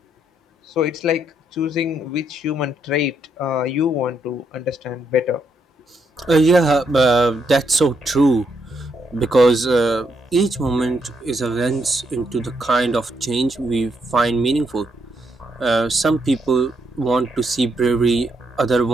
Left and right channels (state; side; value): normal; both; correlation 0.76